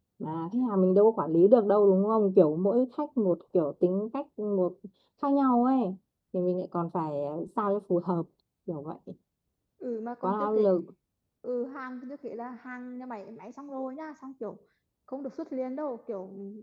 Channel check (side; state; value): both; identical; correlation 1.00